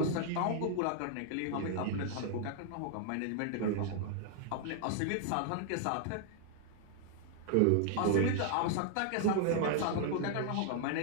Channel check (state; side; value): different; both; correlation 0.00